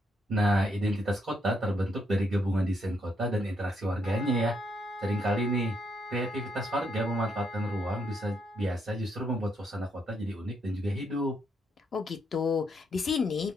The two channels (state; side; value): normal; both; correlation 0.76